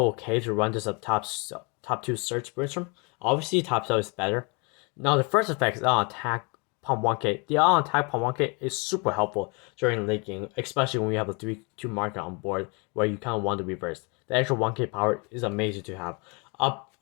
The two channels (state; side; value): quieter; right; 31.7 dB